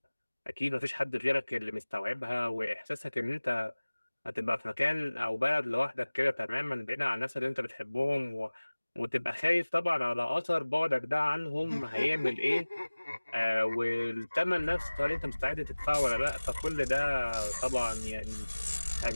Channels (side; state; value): both; inverted; correlation -1.00